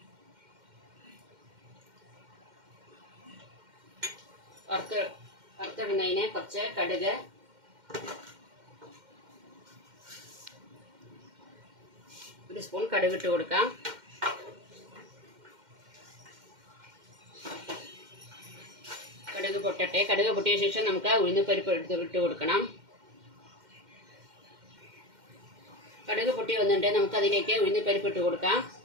വറുത്തിടുന്നതിന് കുറച്ച് കടുക്, ഒരു സ്പൂൺ കടുക് ഇട്ട് കൊടുക്കാം. കടുക് പൊട്ടട്ടെ. കടുക് പൊട്ടിയ ശേഷം നമുക്ക് ഉഴുന്നുപരിപ്പ് ഇട്ട് കൊടുക്കണം. കടുക് പൊട്ടി വന്നിട്ട് നമുക്ക് അതിലേക്ക് ഉഴുന്നുപരിപ്പ് ഇട്ട് കൊടുക്കാം.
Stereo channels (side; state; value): left; late; 2.1 ms